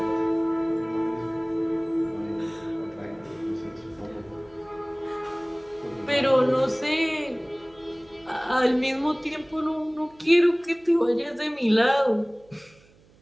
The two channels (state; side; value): noise; right; hum, 29 dB below the sound